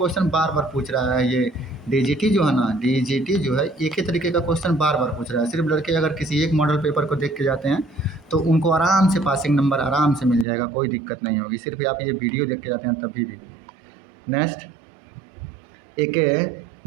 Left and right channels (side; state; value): left; drops out; at 10.5 s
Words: बार बार पूछ रहा है। ये डीजीटी जो है ना, डीजीटी जो है एक ही तरीके का क्वेश्चन बार बार पूछ रहा है। सिर्फ लड़के अगर किसी एक मॉडल पेपर को देख के जाते हैं तो उनको आराम से पासिंग नंबर आराम से मिल जाएगा, कोई दिक्कत नहीं होगी। सिर्फ आप ये वीडियो देख के जाते हैं तभी भी। नेक्स्ट, एक